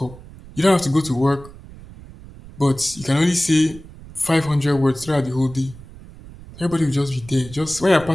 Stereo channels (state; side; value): noise; right; rumble, 18 dB below the sound